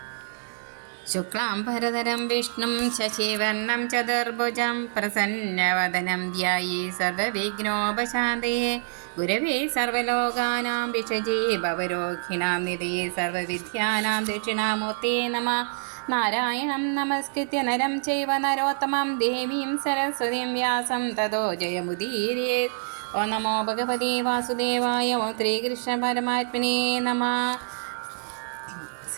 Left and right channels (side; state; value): left; silent; digital silence